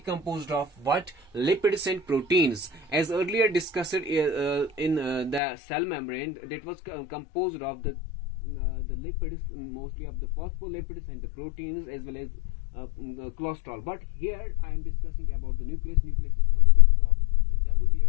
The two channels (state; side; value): drops out; right; at 5.4 s